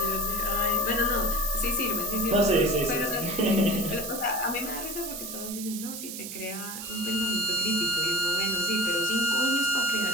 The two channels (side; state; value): right; noise; hiss, 9 dB below the sound